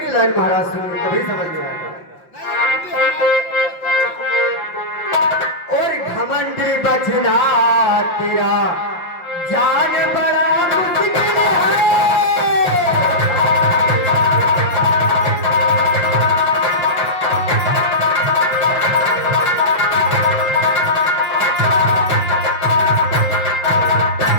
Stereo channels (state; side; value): late; right; 5.7 ms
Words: लाइन महाराज सुनिए तभी समझ में आएगा। और घमंडी बचना तेरा जान बड़ा मुश्किल है।